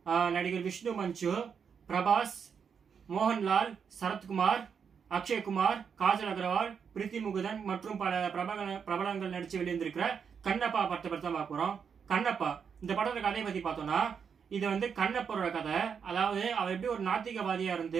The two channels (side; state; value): left; quieter; 6.7 dB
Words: நடிகர் விஷ்ணு மஞ்சு, பிரபாஸ், மோகன்லால், சரத்குமார், அக்ஷய்குமார், காஜல் அகர்வால், பிரீத்தி முகுதன் மற்றும் பல பிரபலங்கள் நடித்து வெளியிருந்திருக்கிற கண்ணப்பா படத்தை பற்றி தான் பார்க்க போகிறோம். கண்ணப்பா இந்த படத்தோட கதையை பற்றி பார்த்தோம்னா, இது வந்து கண்ணப்பரோட கதை. அதாவது அவர் எப்படி ஒரு நாத்திகவாதியாக